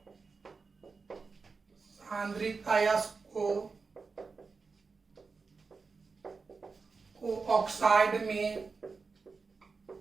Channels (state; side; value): quieter; left; 4.6 dB